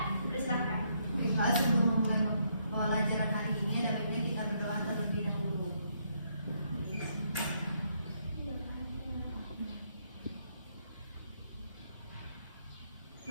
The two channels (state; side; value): inverted; both; correlation -0.73